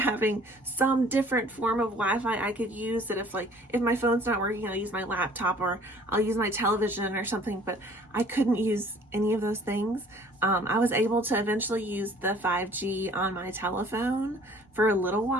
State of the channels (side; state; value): both; normal; correlation 0.54